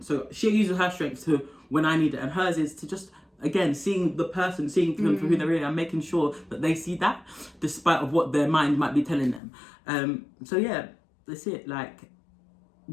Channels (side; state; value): right; drops out; at 9.4 s